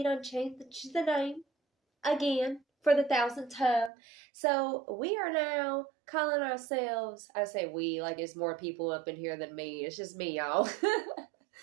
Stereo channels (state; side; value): drops out; left; at 3.9 s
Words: done changed the name again for the 1000th time. So we are now calling ourselves, I say we, like it's more people up in here than me. It's just me, y'all.